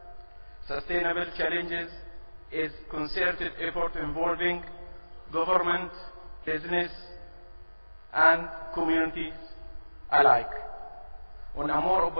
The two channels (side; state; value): both; inverted; correlation -1.00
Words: sustainable challenges is concerted effort involving government, business, and communities alike. On a more